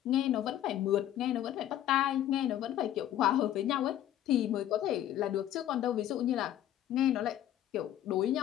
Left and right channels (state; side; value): quieter; right; 12.0 dB